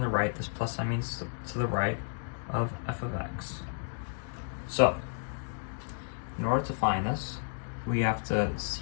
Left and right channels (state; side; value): silent; right; digital silence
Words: right, this plus sign means to the right, of f of x. So, in order to find this, we have to